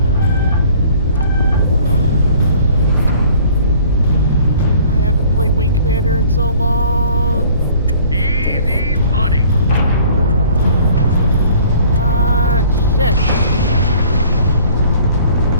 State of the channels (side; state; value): both; inverted; correlation -0.53